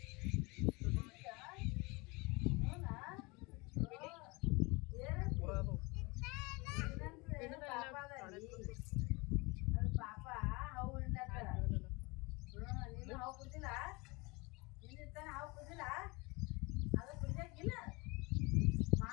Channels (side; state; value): right; quieter; 26.1 dB